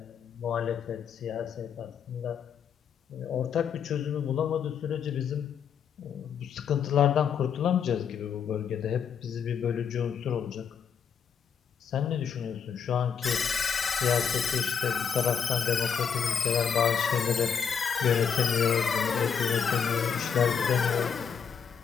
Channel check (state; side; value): quieter; right; 7.2 dB